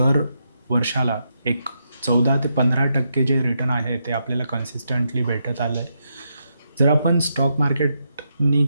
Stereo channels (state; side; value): inverted; both; correlation -0.82